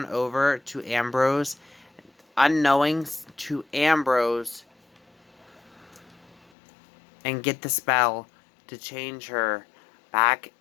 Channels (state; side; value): drops out; right; at 6.5 s